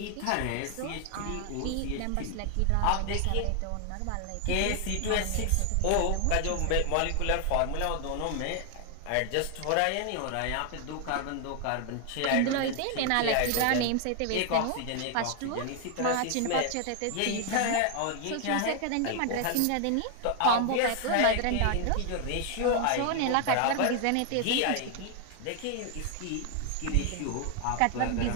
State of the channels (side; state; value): both; different; correlation 0.00